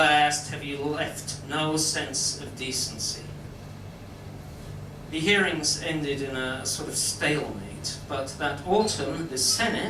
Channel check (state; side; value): identical; both; correlation 1.00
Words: have you left no sense of decency?" The hearings ended in a sort of stalemate, but that autumn the